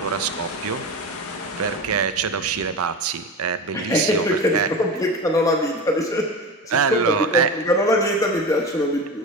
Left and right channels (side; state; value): both; normal; correlation 0.27